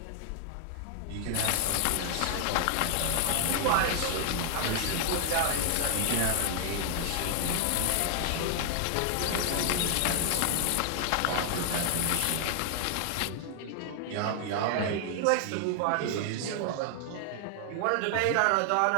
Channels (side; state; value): both; different; correlation 0.00